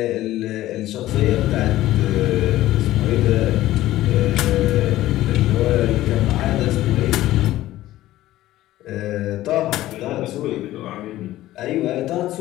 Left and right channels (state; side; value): quieter; right; 15.2 dB